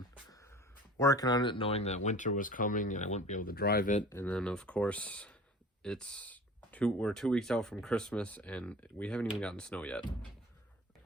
working on it, knowing that winter was coming and I wouldn't be able to drive it. And then of course we're 2 weeks out from Christmas and we haven't even gotten snow yet.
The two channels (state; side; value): normal; both; correlation 0.41